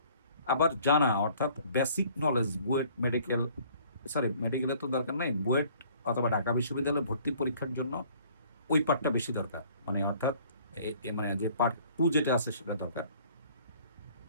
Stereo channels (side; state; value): both; inverted; correlation -0.56